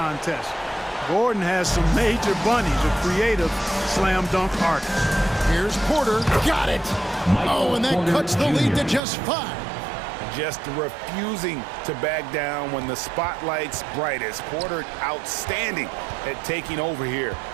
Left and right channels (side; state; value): left; drops out; at 9.0 s